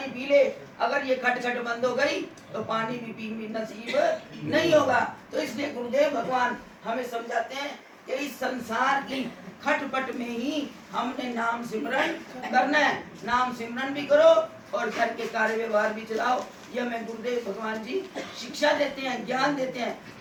पी ले, अगर ये खटखट बंद हो गई तो पानी भी पी नसीब नहीं होगा। तो इसलिए गुरुदेव भगवान हमें समझाते हैं कि इस संसार की खटपट में ही हमने नाम सिमरन करना है। नाम सिमरन भी करो और घर के कार्य व्यवहार भी चलाओ। यह हमें गुरुदेव भगवान जी शिक्षा देते हैं, ज्ञान देते हैं।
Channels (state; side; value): identical; both; correlation 1.00